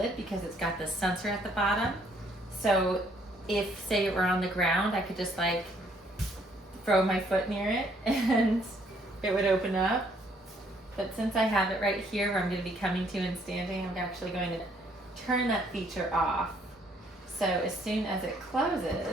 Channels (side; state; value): both; normal; correlation 0.66